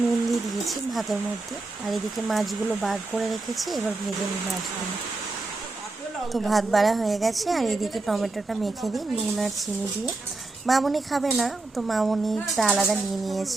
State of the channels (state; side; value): quieter; left; 3.3 dB